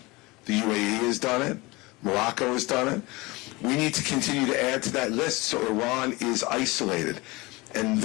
The UAE has done it. Morocco has done it. We need to continue to add to that list so Iran is isolated. And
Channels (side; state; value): right; quieter; 23.2 dB